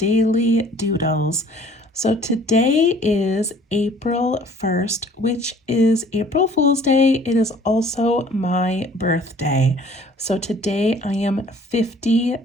doodles. So today is April 1st, which is April Fool's Day. It is also my birthday. So today I am 50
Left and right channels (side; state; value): both; normal; correlation 0.53